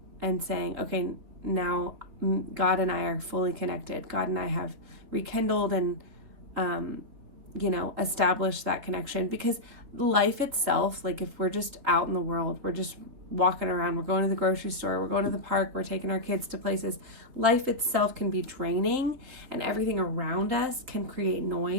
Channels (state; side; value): late; left; 4.1 ms